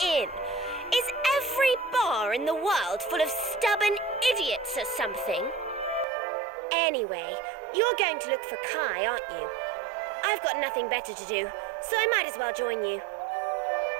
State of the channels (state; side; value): drops out; left; at 6.1 s